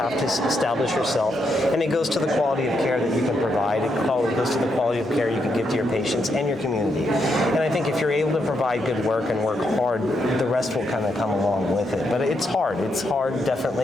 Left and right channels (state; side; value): normal; both; correlation 0.80